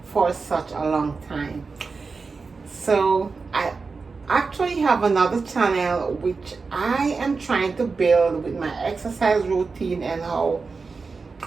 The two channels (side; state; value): left; quieter; 4.5 dB